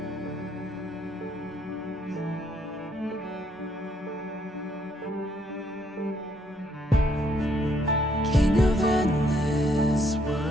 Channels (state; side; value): normal; both; correlation 0.70